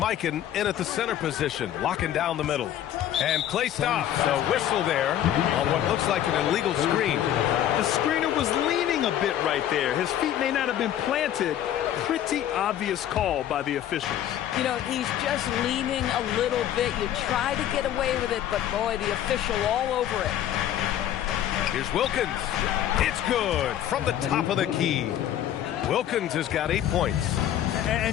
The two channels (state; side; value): quieter; right; 11.3 dB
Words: in at the center position, locking down the middle. And Clay stops. A whistle there on what looks like an illegal screen. The screener was leaning a bit right there. His feet may not have been planted. Pretty obvious call by the officials. You know, he's just leaning a little bit. You try to get away with it, but boy, the official all over it. Here's Wilkins. It's good from the top of the key. Wilkins has got 8 points.